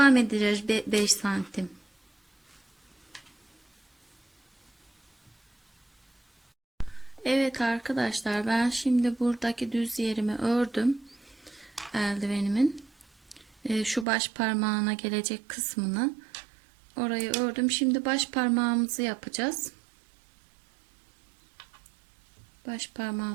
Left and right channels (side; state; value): left; drops out; at 14.1 s